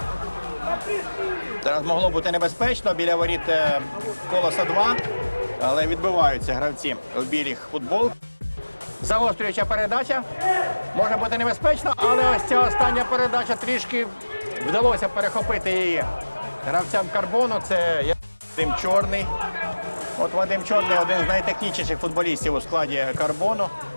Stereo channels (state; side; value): inverted; both; correlation -1.00